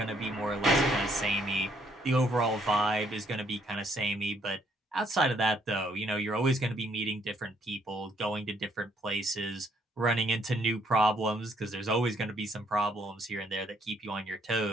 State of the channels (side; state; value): both; normal; correlation 0.69